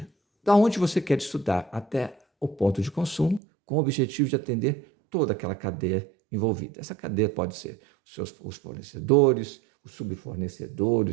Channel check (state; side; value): drops out; left; at 3.4 s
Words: da onde você quer estudar até o ponto de consumo, com o objetivo de atender toda aquela cadeia envolvida. Essa cadeia pode ser os fornecedores, os